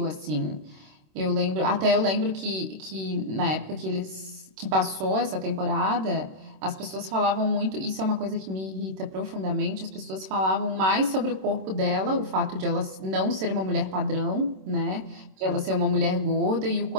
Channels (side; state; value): left; late; 26 ms